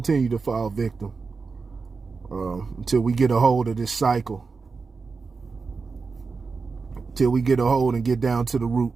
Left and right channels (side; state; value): left; quieter; 4.6 dB